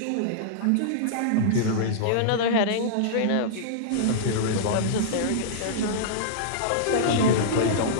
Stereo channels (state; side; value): different; both; correlation -0.02